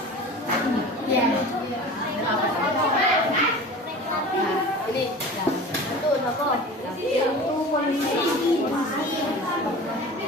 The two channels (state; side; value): normal; both; correlation 0.37